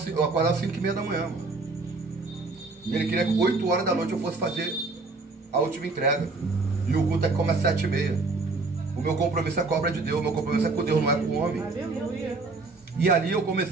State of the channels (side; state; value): left; quieter; 3.6 dB